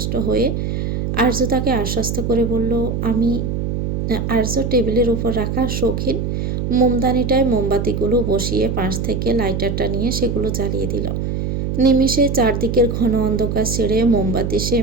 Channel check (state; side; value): noise; right; hum, 1 dB below the sound